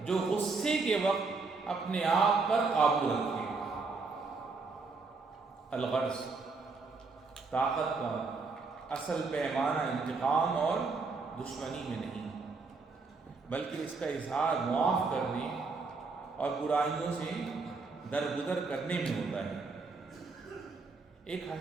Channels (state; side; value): quieter; left; 4.2 dB